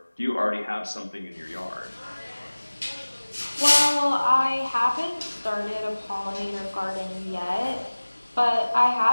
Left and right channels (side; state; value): both; inverted; correlation -1.00